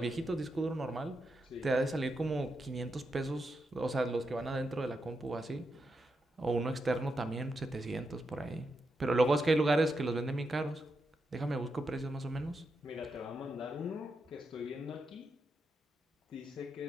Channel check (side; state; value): both; normal; correlation 0.85